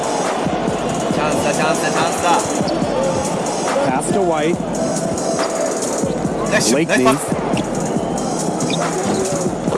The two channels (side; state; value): both; identical; correlation 1.00